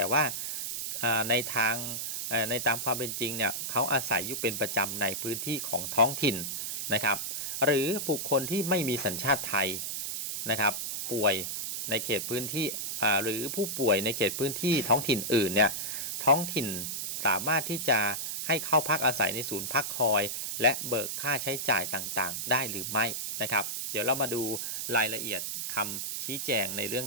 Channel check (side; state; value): right; noise; hiss, 3 dB below the sound